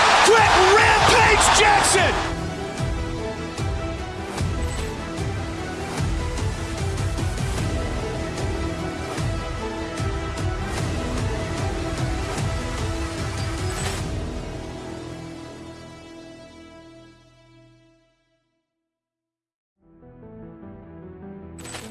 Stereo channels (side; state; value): both; identical; correlation 1.00